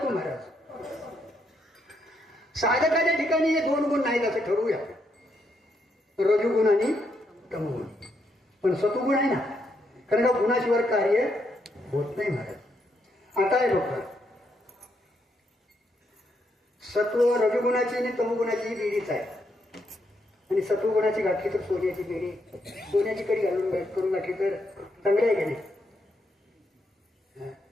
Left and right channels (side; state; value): both; normal; correlation 0.77